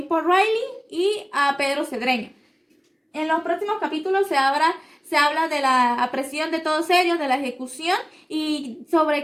Riley y a Pedro Cedreño. En los próximos capítulos se habla de la apresión de todos ellos, de la ejecución y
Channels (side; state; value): both; identical; correlation 1.00